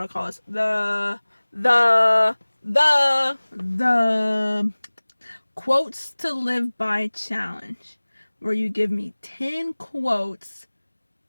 to call this? The quotes to live by challenge, where you give me 10 quotes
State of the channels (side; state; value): both; inverted; correlation -1.00